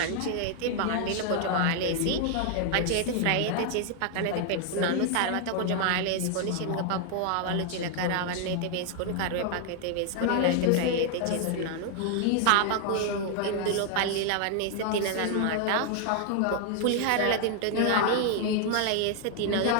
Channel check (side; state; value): both; different; correlation 0.00